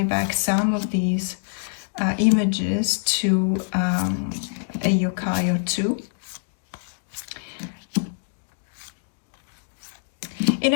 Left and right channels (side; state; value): right; silent; digital silence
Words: back some of these images to a yokai or two. In